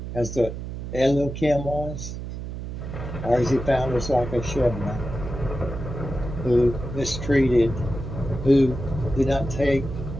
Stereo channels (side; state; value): right; noise; hum, 7 dB below the sound